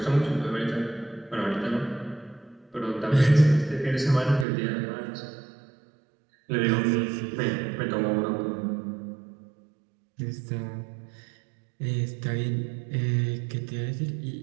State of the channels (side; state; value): left; drops out; at 4.5 s